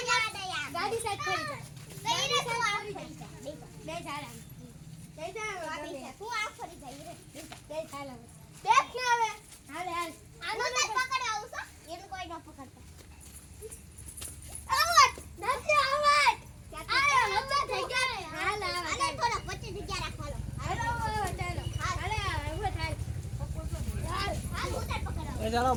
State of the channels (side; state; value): both; identical; correlation 1.00